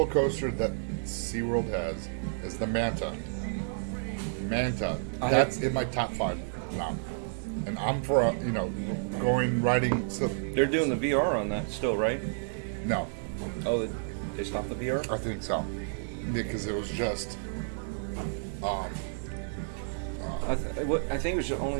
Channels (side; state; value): left; silent; 57 dB below the other